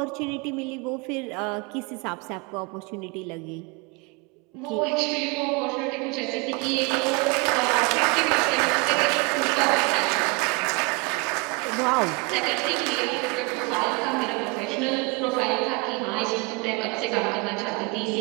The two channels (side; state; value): left; quieter; 28.5 dB